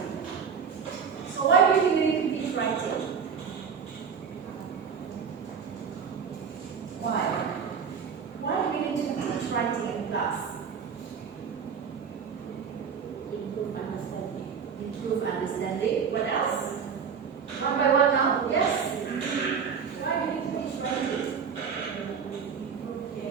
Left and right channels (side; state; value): left; quieter; 6.5 dB